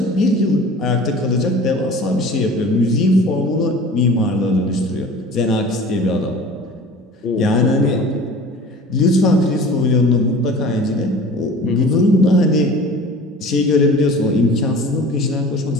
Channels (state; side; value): normal; both; correlation 0.41